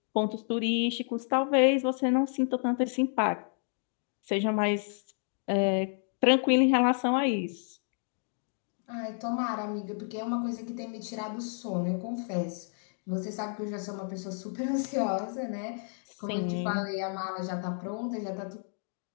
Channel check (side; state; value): right; silent; 57 dB below the other